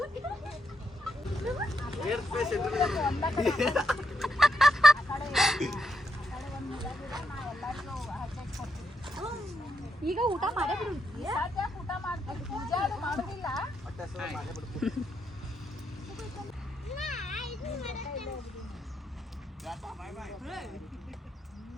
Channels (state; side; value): normal; both; correlation 0.80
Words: ಈಗ ಊಟ ಮಾಡೇ ಬಿಡು. ಊಟ ಮಾಡ್ತೀವಿ, ಪೂಜೆ ಮಾಡೋದಿಲ್ಲ.